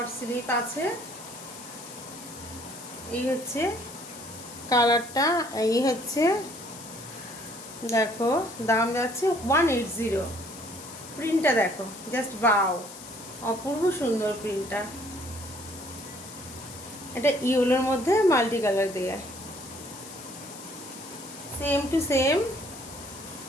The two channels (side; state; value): left; noise; hiss, 15 dB below the sound